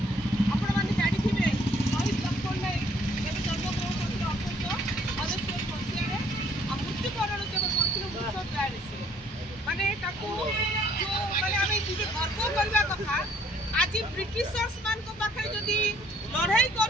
माने गर्व करवा कथा आज ब्रिटिशर्स मान को पाखे जदि लड़ाई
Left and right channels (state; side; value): normal; both; correlation 0.63